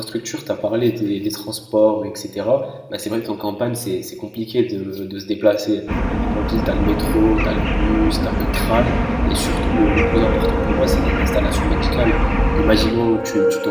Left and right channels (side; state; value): both; identical; correlation 1.00